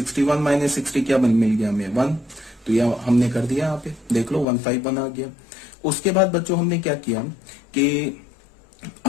माइनस 60 क्या मिल गया हमें, 1। तो यह हमने कर दिया, यहाँ पे देख लो 151 आ गया। उसके बाद बच्चों हमने क्या किया कि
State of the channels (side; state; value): right; drops out; at 4.5 s